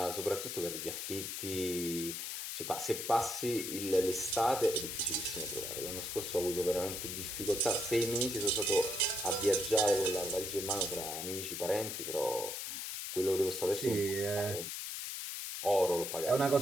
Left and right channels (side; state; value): left; noise; hiss, 5 dB below the sound